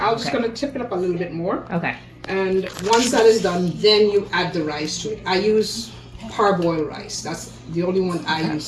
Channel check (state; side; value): identical; both; correlation 1.00